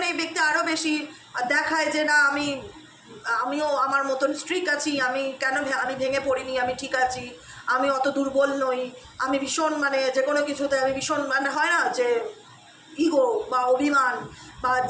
এই ব্যক্তি আরও বেশি দেখায় যে না আমিও আমার মতন স্ট্রিক আছি, আমি ভেঙে পড়িনি, আমি ঠিক আছি, আমি অত দুর্বল নই, আমি ভীষণ মানে যে কোনো কিছুতে আমি ভীষণ মানে হয় না যে ইগো বা অভিমান বা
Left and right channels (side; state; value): both; identical; correlation 1.00